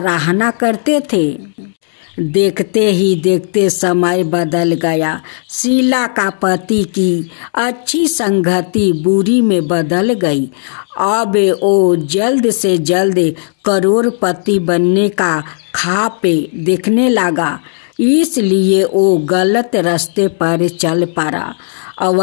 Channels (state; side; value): silent; right; 66 dB below the other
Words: करते थे। देखते ही देखते समय बदल गया। शीला का पति की अच्छी संगति बुरी में बदल गई। अब वो जल्द से जल्द करोड़पति बनने का ख्वाब देखने लगा। इसलिए वो गलत रास्ते पर चल पड़ा